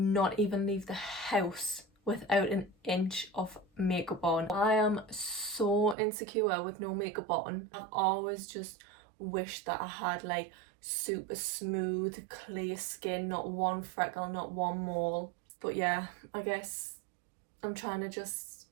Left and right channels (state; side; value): drops out; left; at 6.0 s